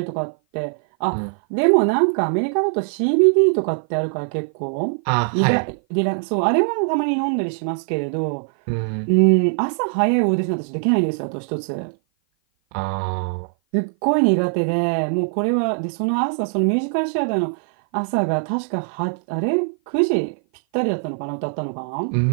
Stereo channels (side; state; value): left; silent; 56 dB below the other